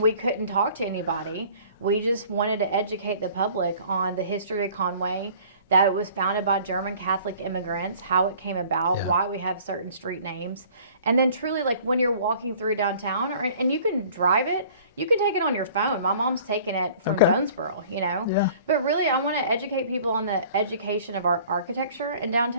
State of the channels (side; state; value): both; inverted; correlation -0.50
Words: we couldn't talk to anybody. We just wanted to educate the public on the history of Conway, that it was founded by German Catholic immigrants, how it came about, why we have certain street names. And then truly, like, when you're walking through downtown, and you can drive it, you can take it on your phone. My mom's taken it from Jonesboro, you know. But really, I want to educate people on the education of our architecture in